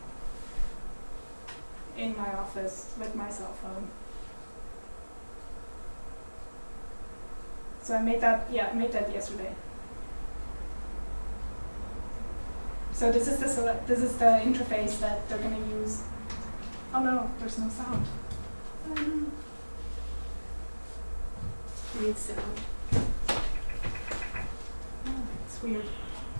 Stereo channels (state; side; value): inverted; both; correlation -1.00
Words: in my office with my cell phone. So I made that yesterday. So this is the interface that they're going to use. Oh no, there's no sound. Need sound. Oh, it's weird.